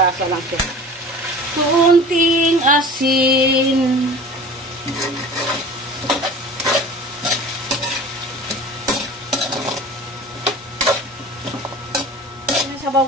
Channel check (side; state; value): both; normal; correlation 0.40